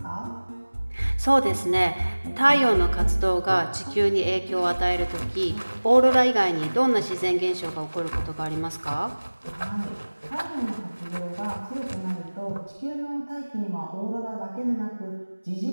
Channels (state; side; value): inverted; both; correlation -1.00